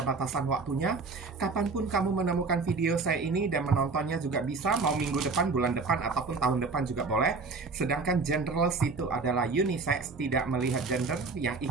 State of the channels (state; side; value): quieter; left; 4.2 dB